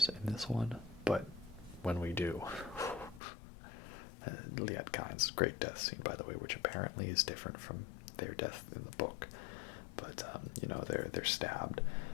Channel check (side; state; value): right; drops out; at 3.2 s